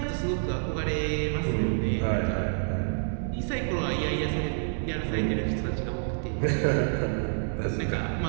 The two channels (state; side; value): silent; left; digital silence